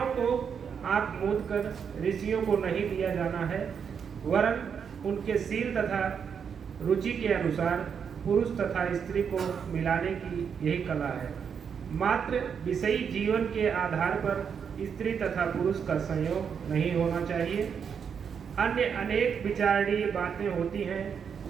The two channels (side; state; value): left; quieter; 7.0 dB